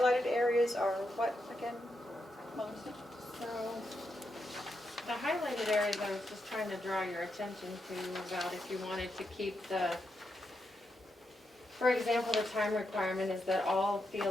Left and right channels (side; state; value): both; normal; correlation 0.84